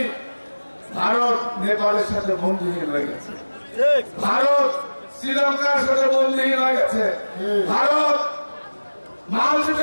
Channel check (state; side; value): inverted; both; correlation -1.00